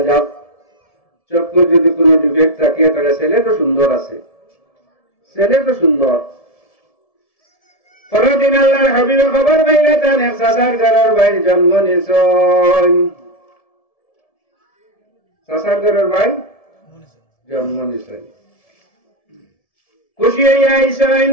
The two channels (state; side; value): late; right; 1.7 ms